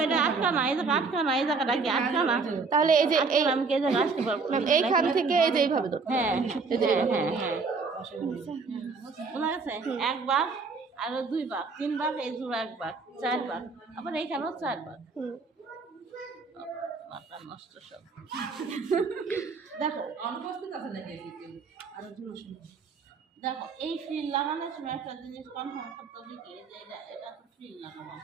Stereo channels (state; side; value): quieter; left; 4.6 dB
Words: এটা আটকা না, এই জায়গা আটকা না, এই জায়গাটা কি আটকা না? তাহলে এই যে আমি কি এই জায়গা আসতে পারবো? এইখান থেকে এই যে এইভাবে ধরো। হ্যাঁ হ্যাঁ হ্যাঁ হ্যাঁ, বোঝা গেছে? এক ভাগ আর দুই ভাগ, তিন ভাগ, এই জোড়া এক ভাগ, চার ভাগ, আবার এইখানেও চার ভাগ। মাথা নষ্ট সব। দেখো দেখো, এই ফ্রিল লাগানোর সময় একটা জিনিস কনফার্ম করতে হবে কি, যে এটা তো ফ্রিল লাগাবো